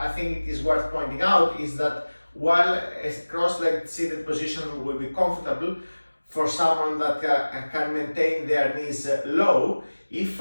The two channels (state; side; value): inverted; both; correlation -1.00